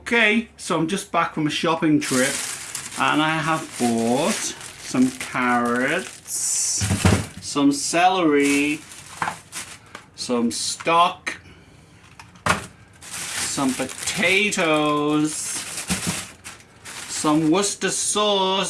so I'm just back from a shopping trip and I have bought some carrots, some celery, some stock, some potatoes, some Worcester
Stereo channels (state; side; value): identical; both; correlation 1.00